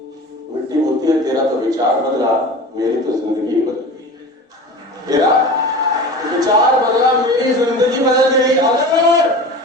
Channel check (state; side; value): normal; both; correlation 0.34